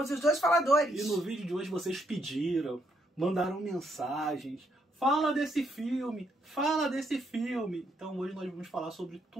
os dois faladores. E no vídeo de hoje vocês pediram, mandaram mensagens. Fala desse filme, fala desse filme. Então hoje nós vamos falar sobre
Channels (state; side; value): normal; both; correlation 0.74